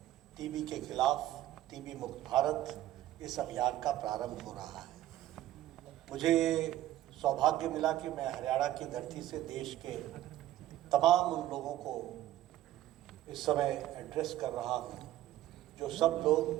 टीबी के खिलाफ टीबी मुक्त भारत इस अभियान का प्रारंभ हो रहा है। मुझे सौभाग्य मिला कि मैं हरियाणा की धरती से देश के तमाम उन लोगों को इस समय एड्रेस कर रहा हूँ जो सब लोग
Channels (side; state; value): left; quieter; 13.9 dB